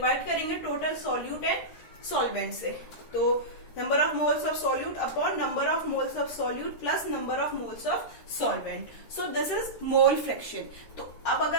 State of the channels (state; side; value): late; right; 13 ms